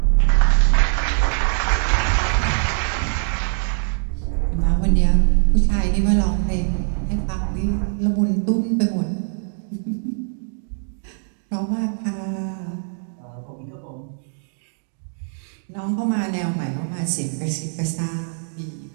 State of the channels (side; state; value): left; silent; digital silence